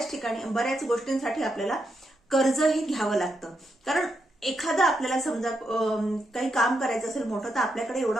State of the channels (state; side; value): normal; both; correlation 0.82